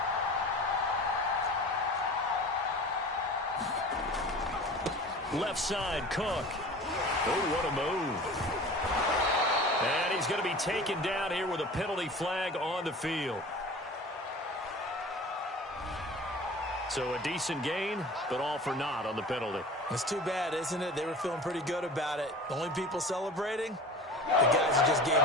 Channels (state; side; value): normal; both; correlation 0.39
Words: 6. Left side, Cook. Oh, what a move. And he's going to be taken down here with a penalty flag on the field. So a decent gain, but all for naught on the penalty. It's too bad, isn't it? They were feeling pretty good about it. The only people celebrating, the guys who just gave